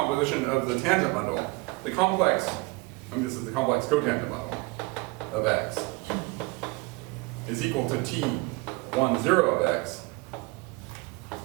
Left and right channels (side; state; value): left; quieter; 25.6 dB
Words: of the tangent bundle. The complex, this is the complex cotangent bundle of X, is equal to T10 of X